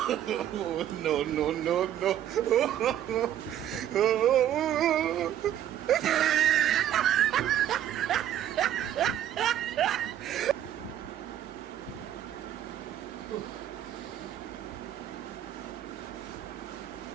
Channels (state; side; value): quieter; left; 11.1 dB